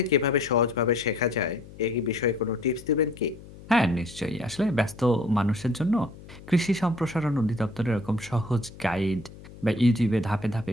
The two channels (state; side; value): noise; left; hum, 18 dB below the sound